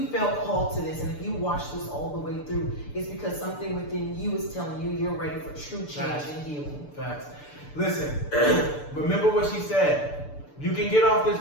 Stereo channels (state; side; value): late; right; 6.8 ms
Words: felt called to this, and if you watched this all the way through, it's because something within you is telling you you're ready for true change and healing. Facts. Listen, remember what she said. You can get off this